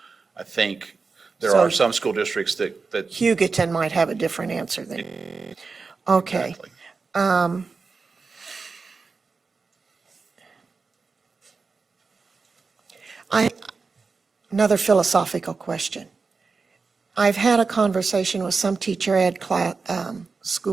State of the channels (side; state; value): left; quieter; 4.5 dB